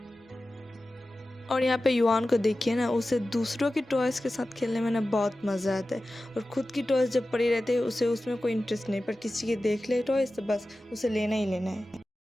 और यहाँ पे युआन को देखिए ना, उसे दूसरों की टॉयज़ के साथ खेलने में ना बहुत मज़ा आता है। और ख़ुद की टॉयज़ जब पड़ी रहती है उसे उसमें कोई इंटरेस्ट नहीं, पर किसी के देख ले टॉयज़ तो बस उसे लेना ही लेना है।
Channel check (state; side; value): normal; both; correlation 0.95